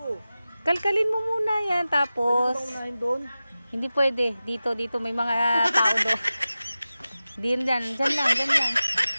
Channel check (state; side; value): inverted; both; correlation -0.95